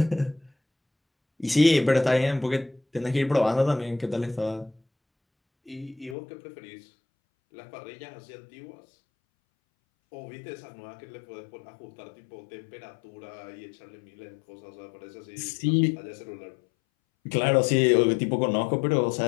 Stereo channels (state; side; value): drops out; right; at 6.2 s